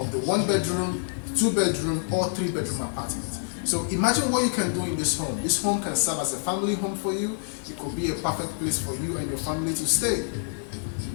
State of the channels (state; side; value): silent; right; digital silence